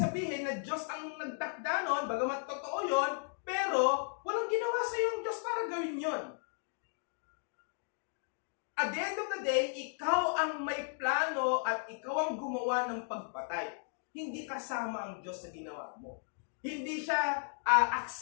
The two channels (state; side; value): silent; right; 54 dB below the other